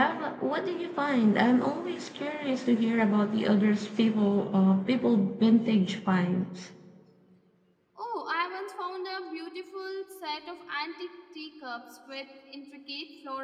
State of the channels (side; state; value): both; identical; correlation 1.00